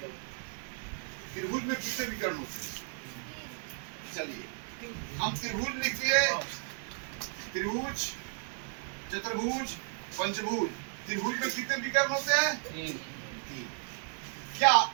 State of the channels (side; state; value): left; silent; 55 dB below the other